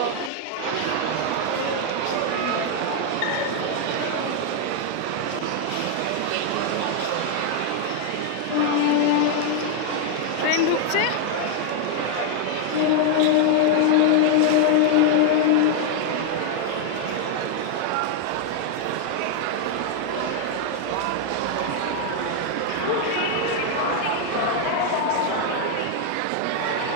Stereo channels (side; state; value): both; different; correlation 0.00